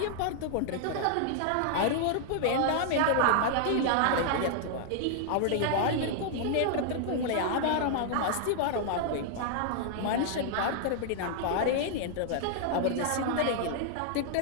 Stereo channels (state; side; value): different; both; correlation 0.00